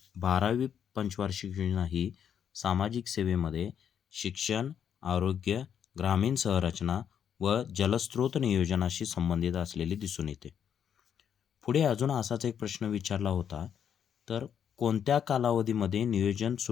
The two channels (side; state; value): right; quieter; 8.4 dB